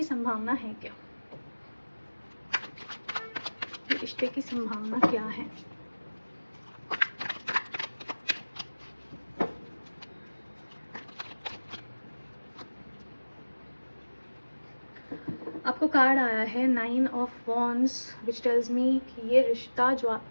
संभावना है क्या. ये रिश्ते की संभावना क्या है. आपको कार्ड आया है 9 ऑफ वॉन्ड्स, विच टेल्स मी कि ये रिश्ता जो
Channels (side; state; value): both; inverted; correlation -1.00